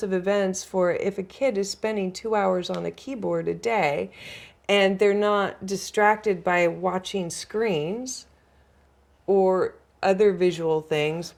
of events for if a kid is spending 2 hours on a keyboard a day and they're not distracted by watching screens or other visual things,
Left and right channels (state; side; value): identical; both; correlation 1.00